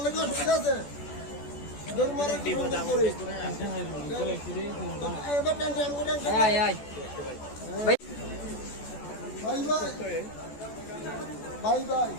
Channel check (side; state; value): right; late; 14 ms